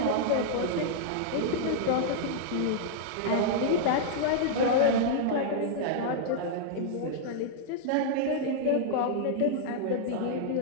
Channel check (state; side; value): different; both; correlation -0.02